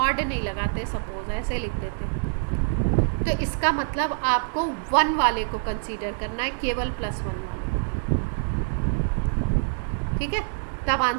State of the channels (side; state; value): left; silent; 61 dB below the other